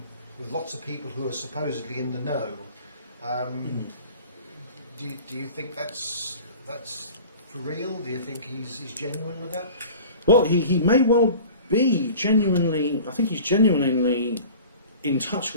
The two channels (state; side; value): inverted; both; correlation -0.41